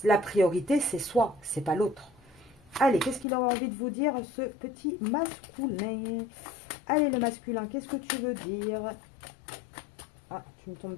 la priorité, c'est soi, c'est pas l'autre. Allez, qu'est-ce qu'il a envie de vous dire, ce petit masculin? Allez, le masculin, qu'est-ce que tu veux dire? Ah, tu me tombes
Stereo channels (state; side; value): drops out; right; at 3.2 s